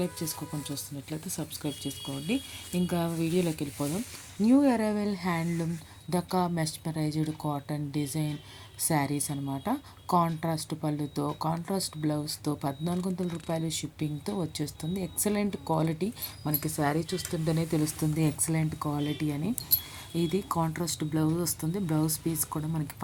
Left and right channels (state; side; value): identical; both; correlation 1.00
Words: చేసుకోకుండా చూస్తున్నట్లయితే సబ్స్క్రైబ్ చేసుకోండి. ఇంకా వీడియోలోకి వెళ్ళిపోదాం. New arrival handloom Dhaka mesmerized cotton design saris అనమాట. కాంట్రాస్ట్ పళ్ళుతో, కాంట్రాస్ట్ బ్లౌజ్తో 1400 రూపాయలు షిప్పింగ్తో వచ్చేస్తుంది. ఎక్సలెంట్ క్వాలిటీ, మనకి శారీ చూస్తుంటేనే తెలుస్తుంది ఎక్సలెంట్ క్వాలిటీ అని. ఇది కాంట్రాస్ట్ బ్లౌజ్ వస్తుంది. బ్లౌజ్ పీస్ కూడా మనకి